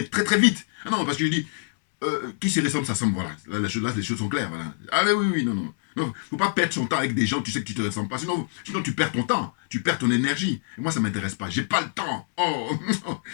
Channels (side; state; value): right; silent; 58 dB below the other